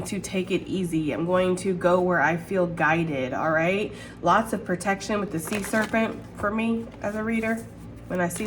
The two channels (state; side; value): identical; both; correlation 1.00